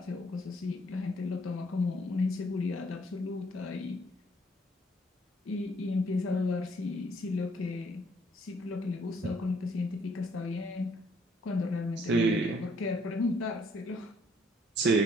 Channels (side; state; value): both; normal; correlation 0.65